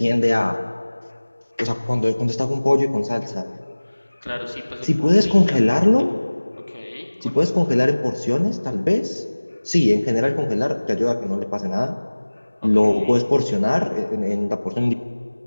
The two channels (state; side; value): inverted; both; correlation -1.00